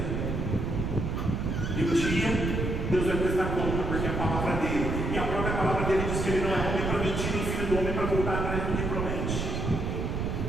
E um dia, Deus vai prestar conta, porque é a palavra dele, e a própria palavra dele diz que ele não é homem para mentir, nem filho do homem para voltar atrás do que promete.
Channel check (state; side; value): noise; right; rumble, 1 dB below the sound